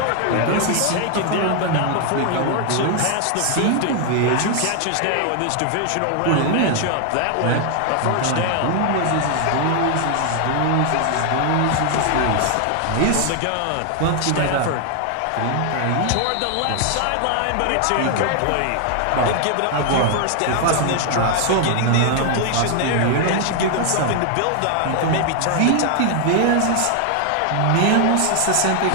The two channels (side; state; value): both; different; correlation 0.00